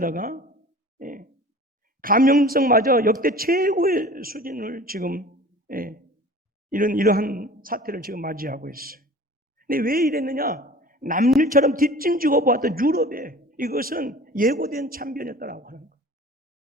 감염성마저 역대 최고의 수준을 지금 이러한 사태를 지금 맞이하고 있어요. 근데 왜 이랬느냐? 남일처럼 뒷짐지고 보았던 유럽에 이것은 예고된 참변이었다라고 하는 거예요.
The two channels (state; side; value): normal; both; correlation 0.42